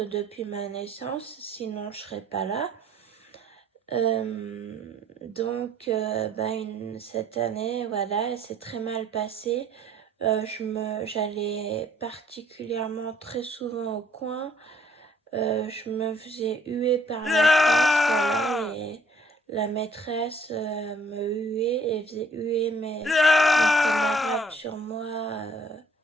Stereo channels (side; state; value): both; normal; correlation 0.60